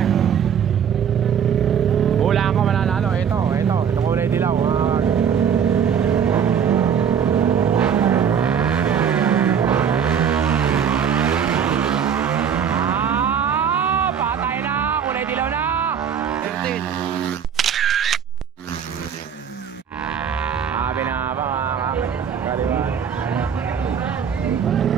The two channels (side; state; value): left; quieter; 7.7 dB